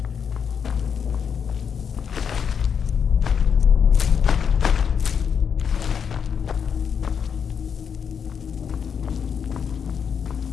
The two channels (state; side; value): quieter; right; 7.1 dB